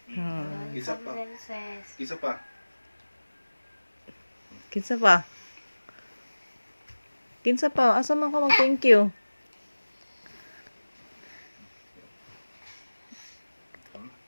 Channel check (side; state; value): both; inverted; correlation -1.00